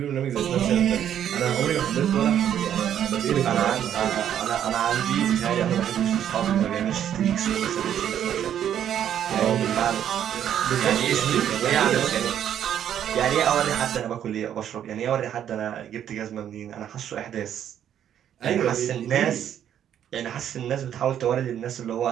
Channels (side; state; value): left; quieter; 10.0 dB